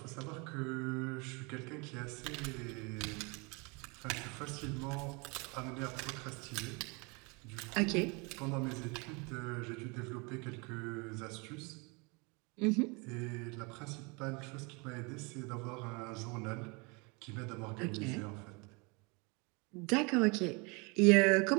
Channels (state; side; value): quieter; left; 29.8 dB